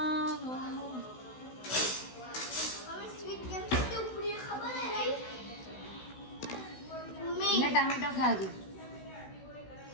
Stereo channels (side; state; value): right; late; 16 ms